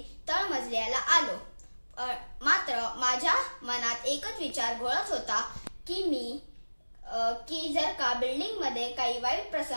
तळमजल्याला आलो। मात्र माझ्या मनात एकच विचार घोळत होता की जर का बिल्डिंग मध्ये काही वाईट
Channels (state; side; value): inverted; both; correlation -1.00